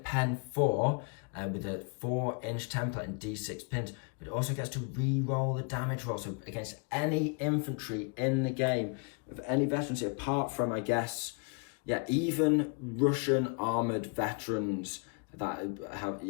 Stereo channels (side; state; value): right; quieter; 36.1 dB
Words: pen 4 with a 4-inch template and D6 pins, but it also gets to re-roll the damage roll. So against any infantry in the game, of any veterancy, apart from, I guess, Yeah, even Russian armored veterans that have,